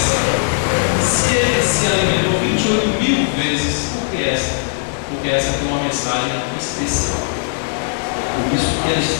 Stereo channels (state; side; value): silent; right; 55 dB below the other